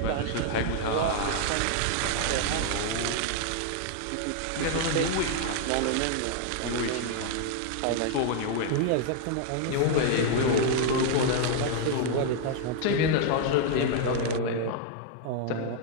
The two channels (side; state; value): both; different; correlation 0.00